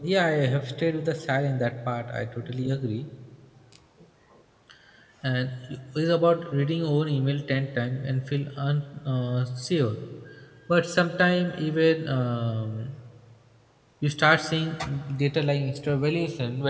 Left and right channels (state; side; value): identical; both; correlation 1.00